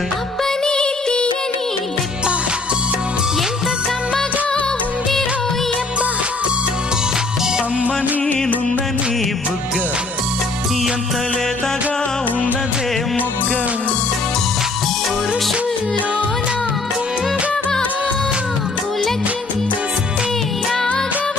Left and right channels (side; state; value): right; quieter; 3.4 dB